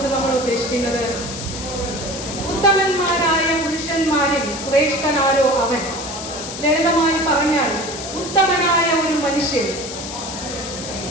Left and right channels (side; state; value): left; noise; hiss, 9 dB below the sound